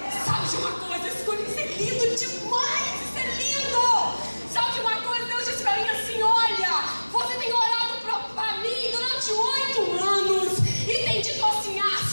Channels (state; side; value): inverted; both; correlation -1.00